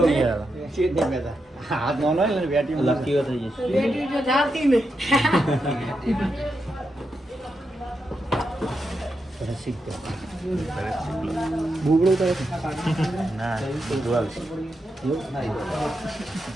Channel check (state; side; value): normal; both; correlation 0.85